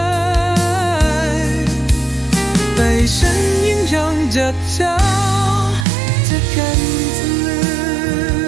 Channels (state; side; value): drops out; left; at 5.9 s